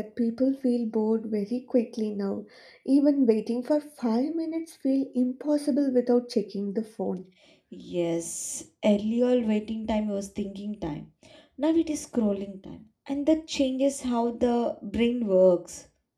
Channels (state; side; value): identical; both; correlation 1.00